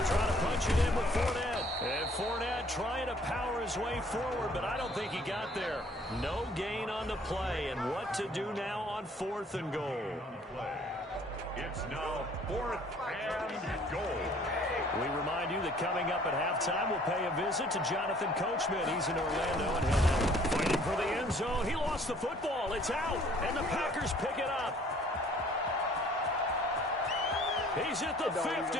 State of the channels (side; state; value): both; normal; correlation 0.57